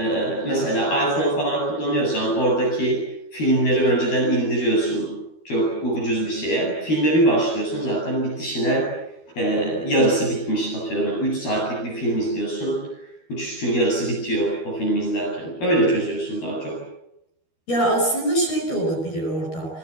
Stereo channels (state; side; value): late; right; 12 ms